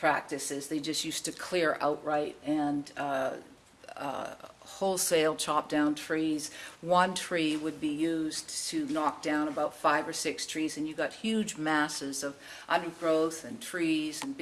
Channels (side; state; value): both; identical; correlation 1.00